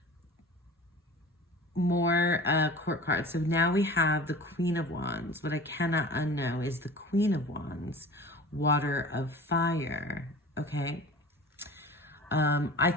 court cards. So now we have the Queen of Wands. What I cannot unknow is the Queen of Wands, Water of Fire. Okay. I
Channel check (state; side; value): normal; both; correlation 0.39